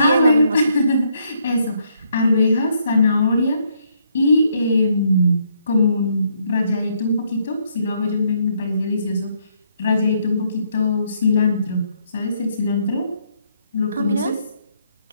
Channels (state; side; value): inverted; both; correlation -0.72